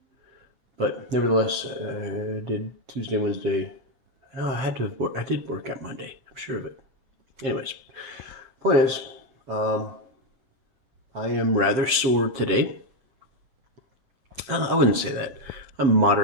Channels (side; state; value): left; late; 7.6 ms